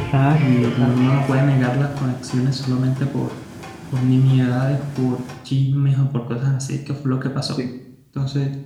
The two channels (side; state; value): both; identical; correlation 1.00